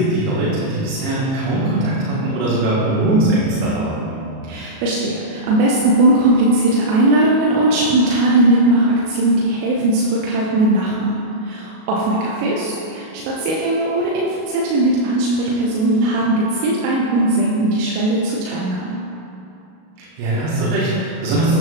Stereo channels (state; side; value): late; left; 37 ms